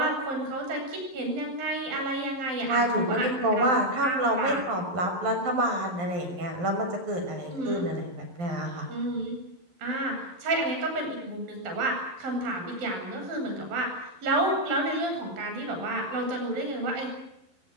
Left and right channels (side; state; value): left; late; 11 ms